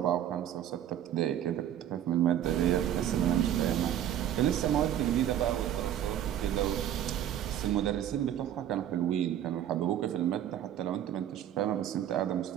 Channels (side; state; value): left; quieter; 10.9 dB